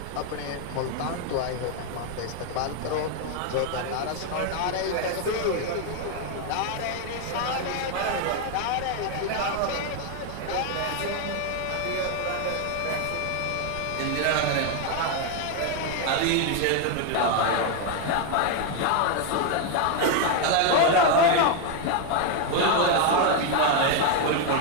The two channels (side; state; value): both; different; correlation 0.01